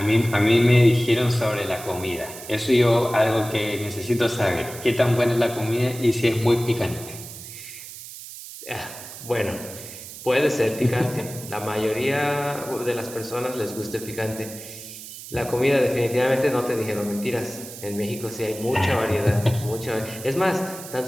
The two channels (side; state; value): right; noise; hiss, 13 dB below the sound